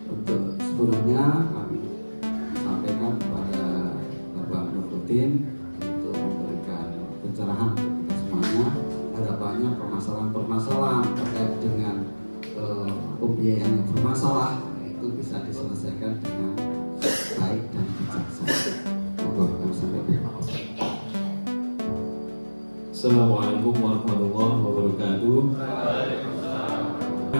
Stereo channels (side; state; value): both; inverted; correlation -1.00